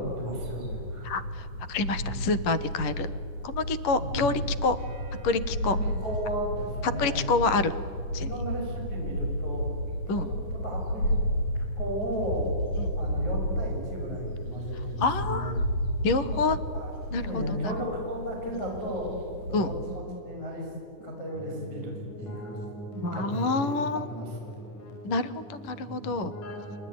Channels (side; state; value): right; late; 11 ms